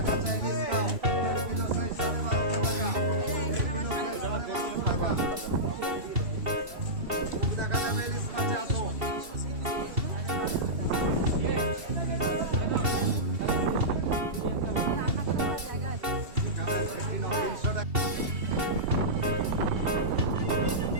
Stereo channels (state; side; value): late; left; 2.7 ms